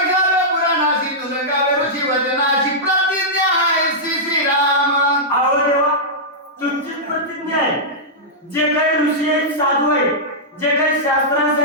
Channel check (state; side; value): normal; both; correlation -0.11